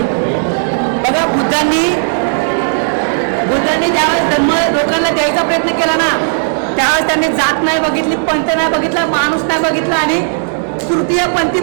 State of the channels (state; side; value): silent; left; digital silence